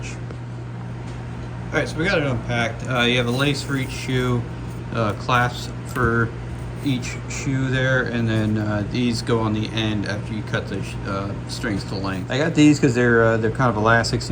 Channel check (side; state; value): both; identical; correlation 1.00